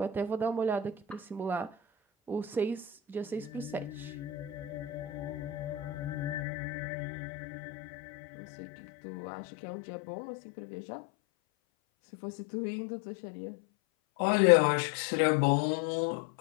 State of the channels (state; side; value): drops out; right; at 6.5 s